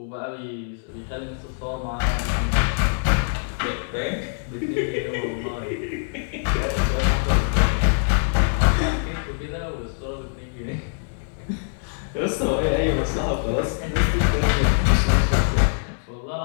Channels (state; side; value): silent; right; digital silence